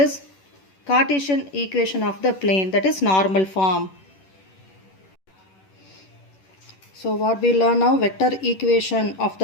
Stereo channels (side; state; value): right; late; 11 ms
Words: Cartesian equation of the plane, that is normal form. So what we learn now, vector equation of